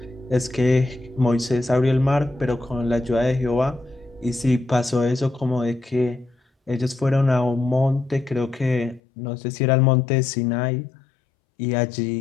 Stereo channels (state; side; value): drops out; right; at 9.0 s